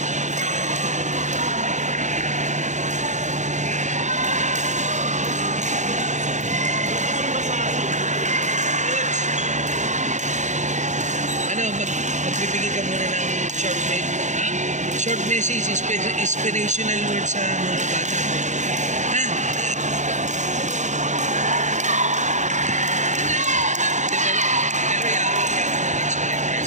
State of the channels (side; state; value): left; late; 0.35 ms